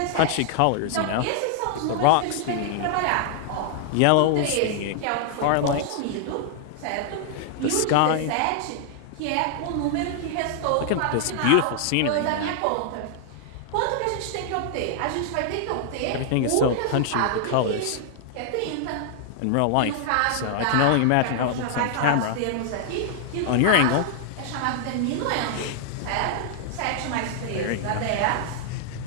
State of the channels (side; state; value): both; different; correlation 0.00